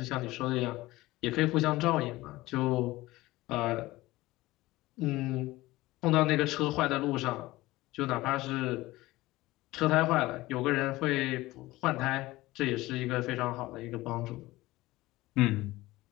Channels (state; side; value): quieter; right; 18.7 dB